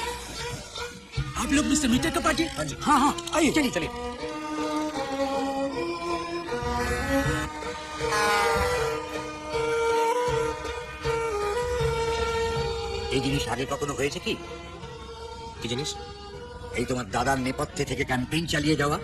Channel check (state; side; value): identical; both; correlation 1.00